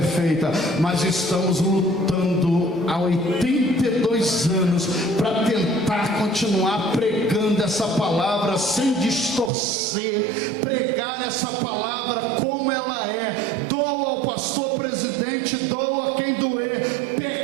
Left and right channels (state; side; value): drops out; left; at 9.5 s